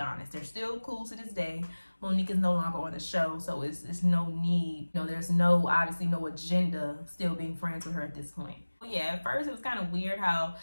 They're still cool to this day, Monique is no longer on the show, so it's no need. You know, there's no, obviously no agenda still being friends with her at this point. Yeah, at first it was kind of weird how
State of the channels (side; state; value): both; inverted; correlation -1.00